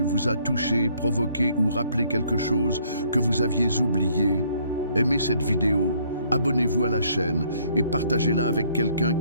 vous a touché, provoqué ou rappelé quelque chose que vous aviez oublié, aimez cette vidéo, abonnez-vous à la chaîne et partagez-la avec quelqu'un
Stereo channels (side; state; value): both; inverted; correlation -0.64